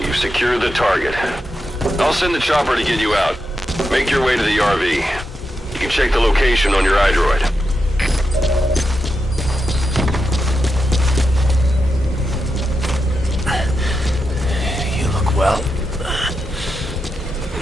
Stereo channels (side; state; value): both; normal; correlation 0.87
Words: secured the target. I'll send the chopper to get you out. Make your way to the RV. You can check the location on your iDroid. You look well.